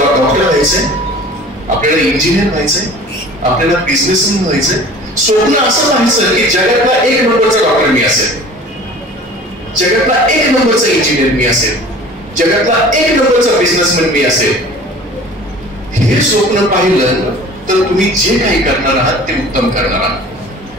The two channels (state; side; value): normal; both; correlation 0.44